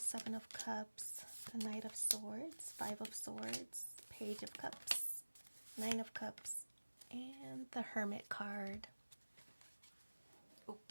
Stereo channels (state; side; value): inverted; both; correlation -1.00